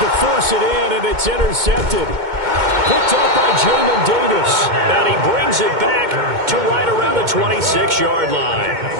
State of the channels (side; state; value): left; late; 2.2 ms